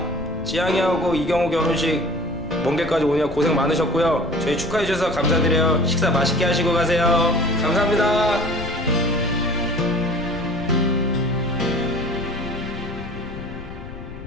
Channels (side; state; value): left; noise; rumble, 13 dB below the sound